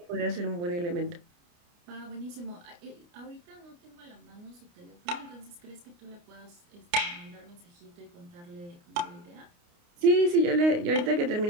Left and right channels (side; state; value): left; late; 29 ms